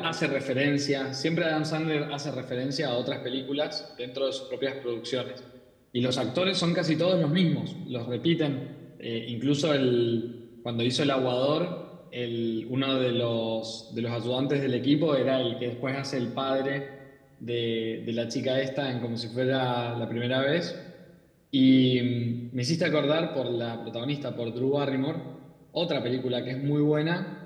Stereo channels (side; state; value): both; identical; correlation 1.00